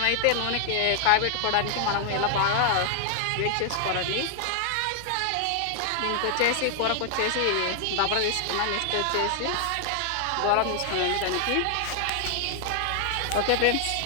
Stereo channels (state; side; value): different; both; correlation 0.00